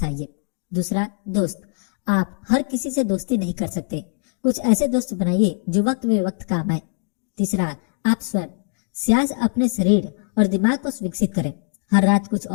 दूसरा, दोस्त। आप हर किसी से दोस्ती नहीं कर सकते। कुछ ऐसे दोस्त बनाइए जो वक्त बे वक्त काम आए। तीसरा, आप स्वयं। सियाज अपने शरीर और दिमाग को विकसित करें। हर रात कुछ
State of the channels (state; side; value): silent; right; 57 dB below the other